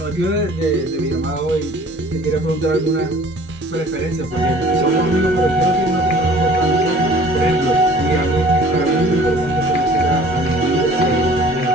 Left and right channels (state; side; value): normal; both; correlation 0.50